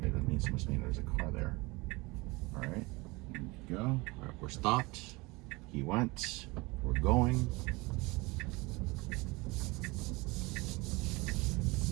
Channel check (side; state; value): left; quieter; 24.2 dB